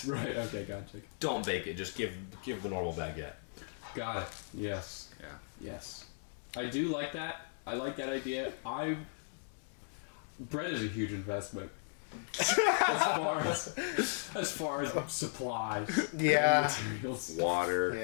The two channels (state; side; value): silent; right; digital silence